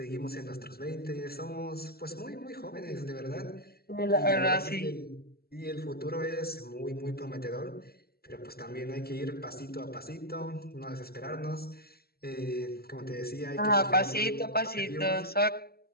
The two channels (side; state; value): right; late; 0.45 ms